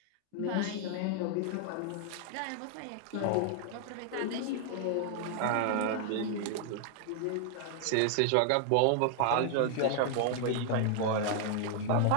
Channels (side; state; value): both; different; correlation 0.00